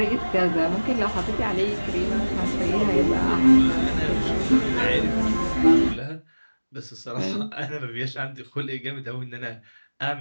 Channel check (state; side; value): inverted; both; correlation -1.00